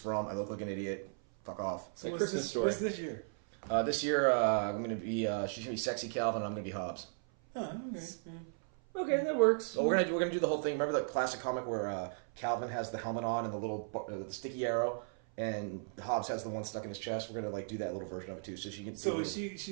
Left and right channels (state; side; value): silent; left; 54 dB below the other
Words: I look like an idiot. Fuck off. It's a Christmas story. What's this year? This year, I'm gonna be. She's gonna be sexy Calvin, and I'm gonna be Hobbs. Oh, okay. Yeah. Okay, that works. So we're gonna do the whole thing. Remember that classic comic where Calvin has the helmet on and the little the sticky arrow, and Hobbs has the one stuck in his chest. We're gonna like do that little version of it too, so she can. So is she It's